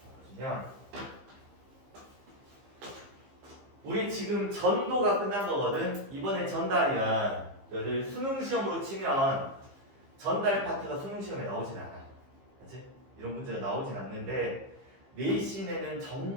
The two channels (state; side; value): late; left; 15 ms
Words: 보시면 우리 지금 전도가 끝난 거거든. 이번엔 전달이야. 너희들 수능 시험으로 치면 전달 파트가 수능 시험에 나오진 않아. 그렇지? 이런 문제가 나오진 않는데 내신에는